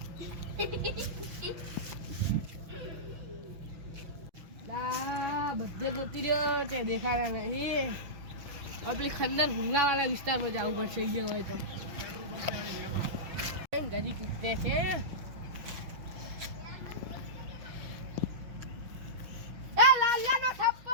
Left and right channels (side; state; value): left; late; 5.8 ms